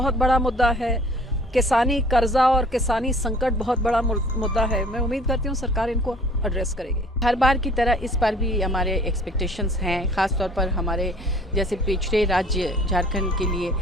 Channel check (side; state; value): both; normal; correlation 0.52